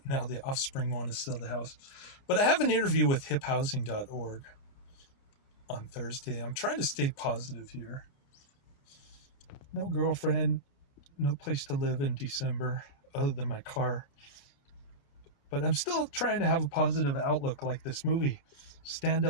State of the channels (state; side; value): late; right; 29 ms